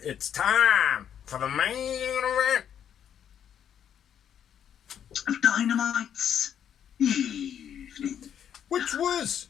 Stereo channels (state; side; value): quieter; right; 9.1 dB